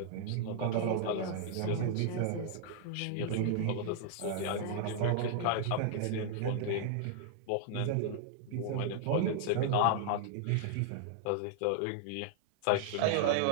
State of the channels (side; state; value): both; different; correlation -0.01